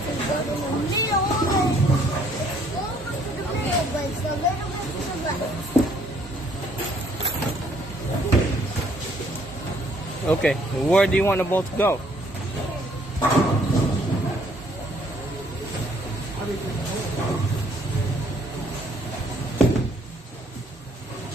Okay, where do you want the ball to go?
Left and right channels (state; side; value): normal; both; correlation 0.64